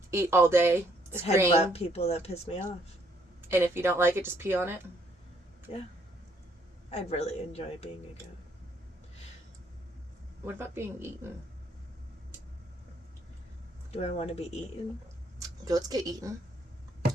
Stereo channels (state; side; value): normal; both; correlation 0.67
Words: eat all day, scream. Headbutt people that piss me off. And if you don't like it, just pee on it. Yeah. I'd really enjoy being a goat. What about being eaten? Do I want to be eaten? Goats get eaten.